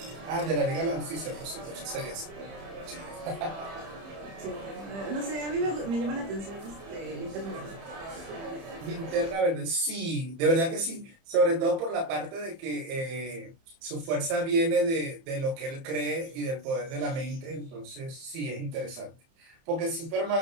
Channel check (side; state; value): left; late; 30 ms